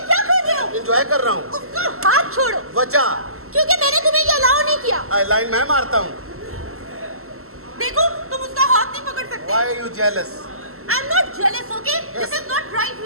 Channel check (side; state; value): left; late; 0.63 ms